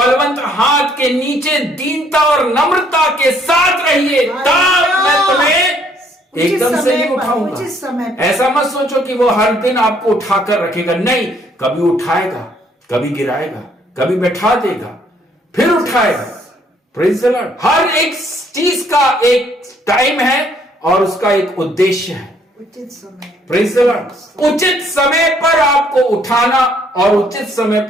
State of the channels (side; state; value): both; normal; correlation 0.66